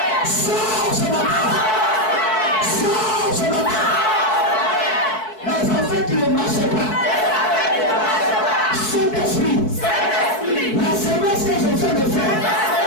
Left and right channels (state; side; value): late; right; 4.6 ms